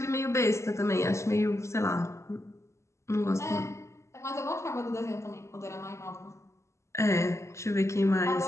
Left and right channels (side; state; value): right; late; 0.14 ms